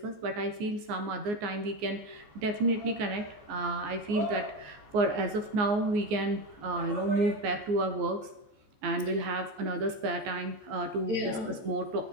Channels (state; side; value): late; left; 14 ms